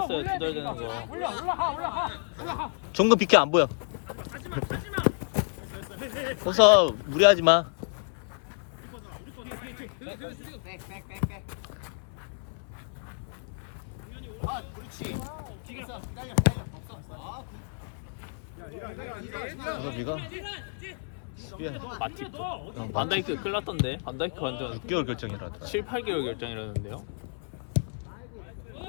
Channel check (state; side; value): silent; right; 56 dB below the other